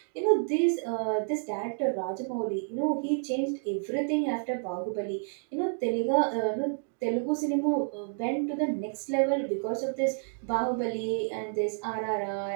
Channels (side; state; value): left; silent; digital silence